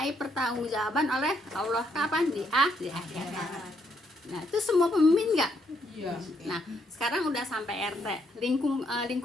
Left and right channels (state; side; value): normal; both; correlation 0.74